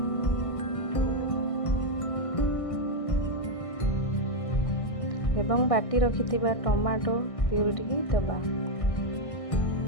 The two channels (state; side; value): late; right; 1.6 ms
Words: ଏବଂ ବାଟି ରଖିଥିବା ଟମାଟୋ ପ୍ୟୁରିଟିକି ଦେବା।